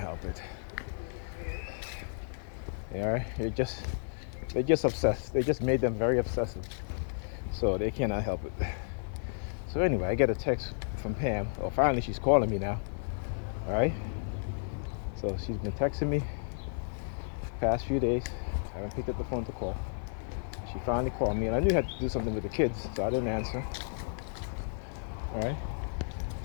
it. All right. They're just obsessed. They just made them very obsessive, so they cannot help it. So anyway, I get a text from Pam. Oh, finally she's calling me now. All right. So she's been texting me past few days. I haven't picked up the phone to call. She finally called me, and I knew I had to do something with the kids, so I didn't answer. All right.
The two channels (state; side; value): silent; right; 56 dB below the other